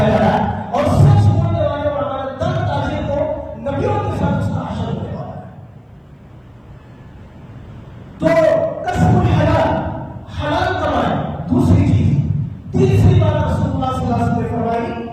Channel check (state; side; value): identical; both; correlation 1.00